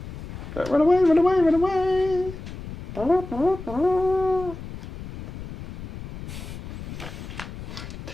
Run away, run away, run away.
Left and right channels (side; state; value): left; noise; rumble, 11 dB below the sound